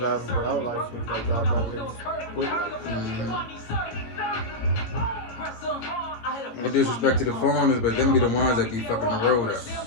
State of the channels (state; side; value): late; right; 17 ms